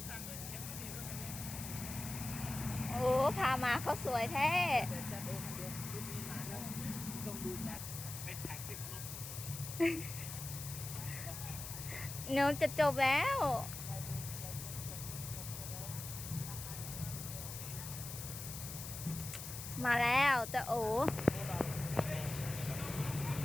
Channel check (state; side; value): noise; left; hiss, 8 dB below the sound